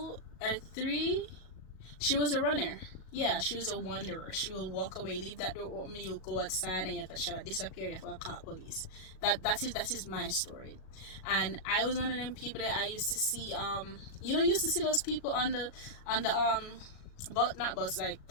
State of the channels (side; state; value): right; late; 37 ms